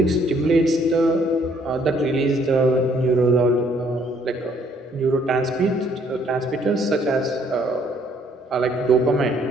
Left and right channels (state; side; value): normal; both; correlation 0.64